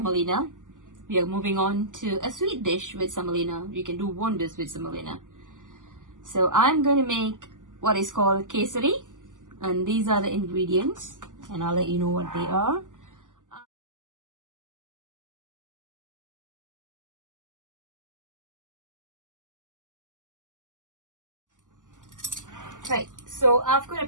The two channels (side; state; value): left; late; 0.87 ms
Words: We are moving on to a sweet dish with semolina. You can do wonders with semolina. So I'm going to make what is called Kesari, and these are the ingredients, and I'll let you know what they are. Right, so I've got a